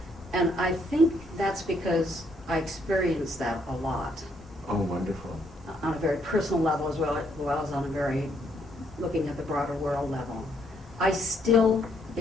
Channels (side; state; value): both; normal; correlation 0.71